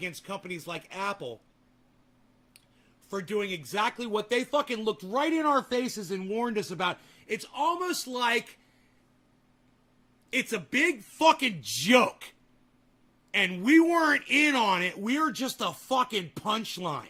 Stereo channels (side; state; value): both; identical; correlation 1.00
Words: companies like Apple for doing exactly what they fucking looked right in our faces and warned us about. It's almost like it's a big fucking joke. And we weren't in on it. We were just a fucking punchline.